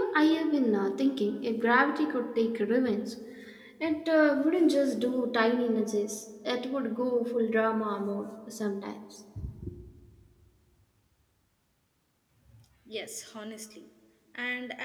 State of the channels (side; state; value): both; identical; correlation 1.00